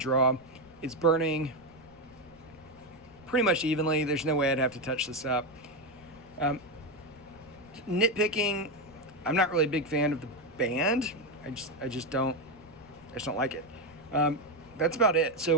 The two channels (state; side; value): noise; right; rumble, 27 dB below the sound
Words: It's burning pretty much evenly. There's no way I'd have to touch this up. Nitpicking, I'm not really a big fan of the band. I just don't like it. That's about it. So